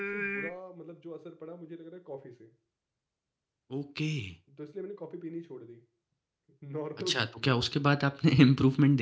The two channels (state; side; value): identical; both; correlation 1.00